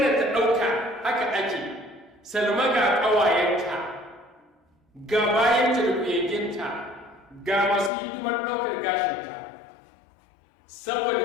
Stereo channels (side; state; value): right; drops out; at 7.9 s